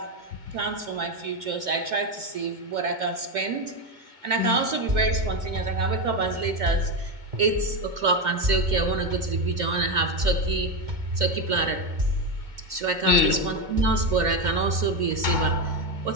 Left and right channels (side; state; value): left; late; 2.2 ms